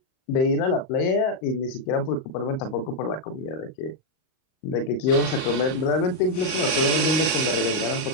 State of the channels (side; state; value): right; late; 38 ms